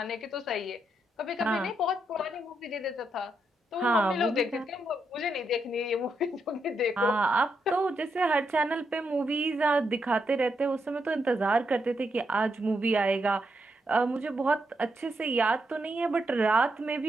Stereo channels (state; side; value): normal; both; correlation 0.81